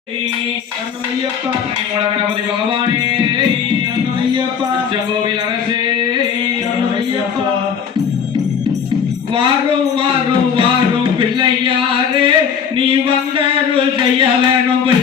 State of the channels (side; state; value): right; quieter; 7.3 dB